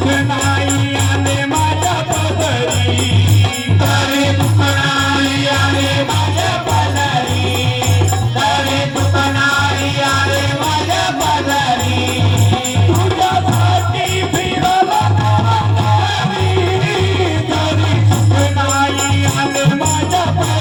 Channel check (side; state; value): both; identical; correlation 1.00